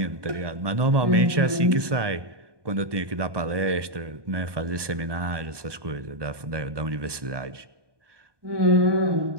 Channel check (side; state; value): left; late; 1.2 ms